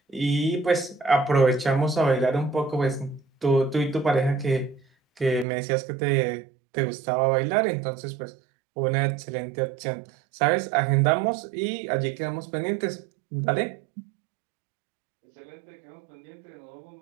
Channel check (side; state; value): left; drops out; at 5.5 s